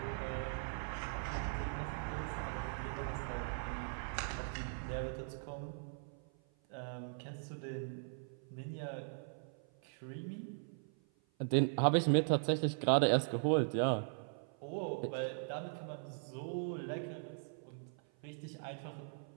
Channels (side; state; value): left; silent; 51 dB below the other